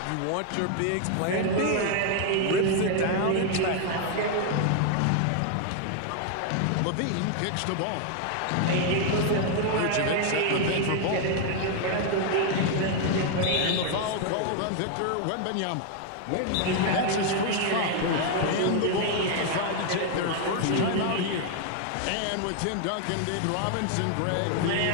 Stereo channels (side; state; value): both; different; correlation 0.00